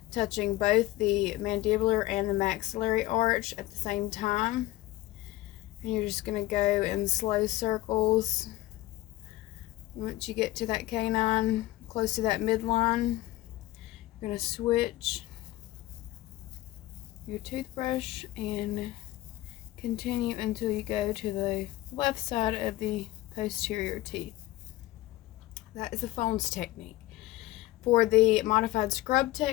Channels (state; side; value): quieter; right; 17.0 dB